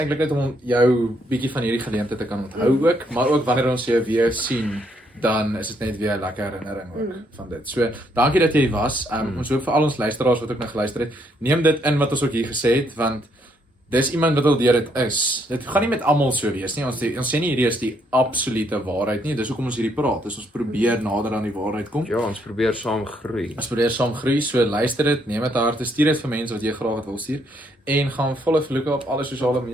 eintlik net om jou bietjie van hierdie geleentheid te kan onthou ook, maar ook wanneer ons jou weer sien, dan is dit net weer 'n lekker herinnering ook van dit. So, dankie dat jy was. Ons hoop vir al ons luisteraars wat ook nou geluister het, neem dit in wat ons ook hier gesê het, want dis iemand wat al deur dit is. Dit gaan nie met almal so wees nie. Ons sê nie hierdie is die absolute waarheid nie. Dis hoekom ons hierdie praat. Dis ons probeer nader aan die waarheid kom. Ja, ons probeer saam groei. Ons probeer saam groei, so luister dit, neem dit harte, stuur dit vir mense wat jy graag wil stuur en gaan follow vir Luca op alle sosiale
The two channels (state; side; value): normal; both; correlation 0.72